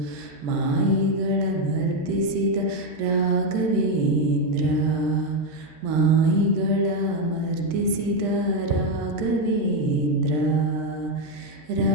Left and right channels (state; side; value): late; left; 13 ms